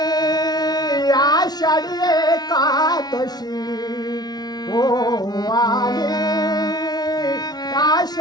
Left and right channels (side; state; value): right; late; 0.19 ms